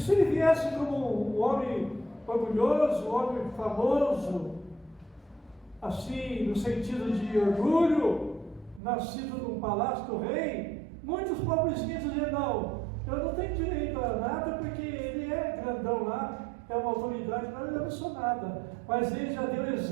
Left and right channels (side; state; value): left; drops out; at 8.8 s